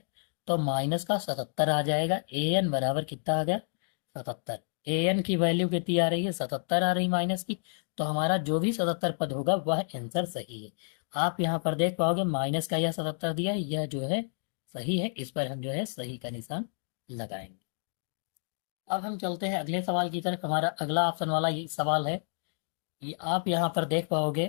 तो माइनस का 77 आ जाएगा। ए एन बराबर कितना आ गया, 77। ए एन की वैल्यू कितनी आ रही है, 77 आ रही माइनस की, तो हमारा जो भी 77 पद होगा वह आंसर सही है। आप यहाँ पर देख पाओगे माइनस का यह 77 दिया है, यह जो है सही है, इस पर हम जो है सही का निशान लगाएंगे। अब हम चलते हैं अगले सवाल की तरफ। हमारा अगला ऑप्शन वाला ये सवाल है, ये आप यहाँ पर देख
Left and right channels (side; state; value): right; silent; digital silence